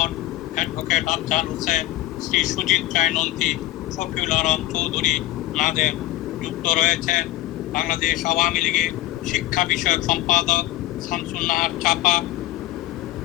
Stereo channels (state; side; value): quieter; right; 16.6 dB